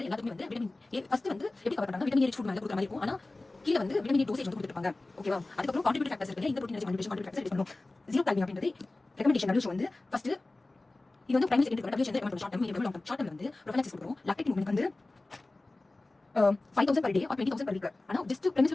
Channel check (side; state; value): right; quieter; 3.0 dB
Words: எல்லாத்துக்குமே வந்து விட்டமின் ஏ ஃபர்ஸ்ட் வந்து எப்படி கவர் பண்றாங்க விட்டமின் ஏ ஃபுட் மேல கொடுக்குற மாதிரி இருக்கும் ஆனா கீழ வந்து விட்டமின் ஏ டோசேஜ் வந்து கொடுத்துருப்பாங்க ஓகேவா அதுக்கப்புறம் கான்ட்ரிபியூட்டிவ் ஃபேக்டர்ஸ் இருக்கு இந்த ப்ரோட்டீன் கான்ட்ரிபியூஷன் ஃபேக்டர்ஸ் பண்ணணும் ஜீரோ கால்மியம் அப்படின்றது ரெக்கமெண்டேஷன் WHO வந்து ஃபர்ஸ்ட் இது வந்து பிரைமரி செகண்டரி WHO வந்து recommend short term medium long term short term வந்து ப்ரொஃபைலாக்சிஸ் கொடுக்குறோம் லாக்டேட் மூவ்மெண்ட் வந்து 5000 per day or 20000 per week ஆனா ஜஸ்ட் பிரைமரி